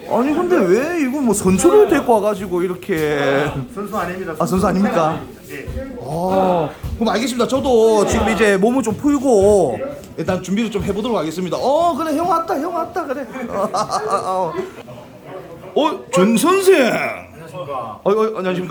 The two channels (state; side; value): identical; both; correlation 1.00